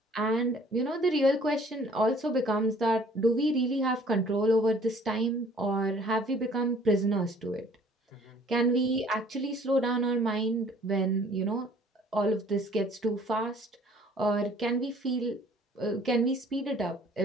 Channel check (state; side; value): normal; both; correlation 0.55